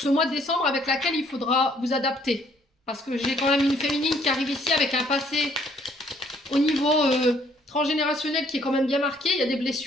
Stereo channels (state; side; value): normal; both; correlation 0.64